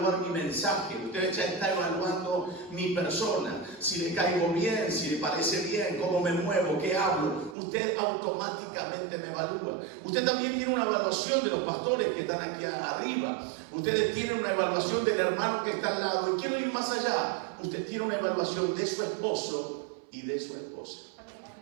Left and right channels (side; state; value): left; drops out; at 7.6 s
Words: mi mensaje. Usted ya está evaluando mi persona. Si le caigo bien, si le parece bien, cómo me muevo, qué hablo. Usted automáticamente me evalúa. Usted también tiene una evaluación de los pastores que están aquí arriba. Ustedes tienen una evaluación del hermano que está al lado. Y quiero ir más allá. Usted tiene una evaluación de su esposo y de su esposa.